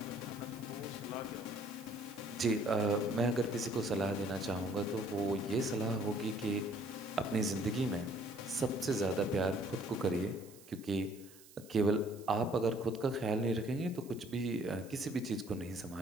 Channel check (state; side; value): noise; right; hiss, 22 dB below the sound